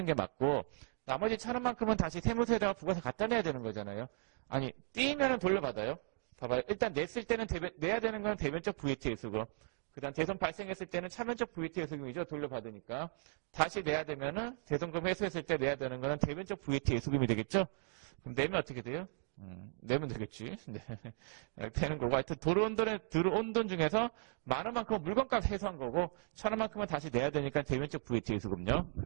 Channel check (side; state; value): left; silent; 53 dB below the other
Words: 게 맞고 나머지 1,000원만큼은 다시 세무서에다가 부가세 갖다 내야 되는 거잖아요. 아니, 띄이면은 돌려받아요. 봐봐요. 일단 냈을 때는 내야 되는 건 대변적 VAT 예수금. 그 다음 대손 발생했을 때는 차변적 VAT 예수금이죠. 돌려받으니까. 다시 내야 되면은 대손금 회수했을 때 내야 되는 거는 대변적 VAT 예수금이 되겠죠. 그럼 내면 어떻게 돼요? 내면 되겠지. 네. 되는 거고. 하여튼 들어온 돈 중에서 많은 만큼은 물건값 회수한 거고 1,000원만큼은 다시 내야 되니까 대변적 VAT 예수금요.